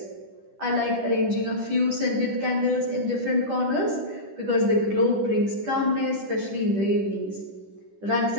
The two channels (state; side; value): late; left; 10 ms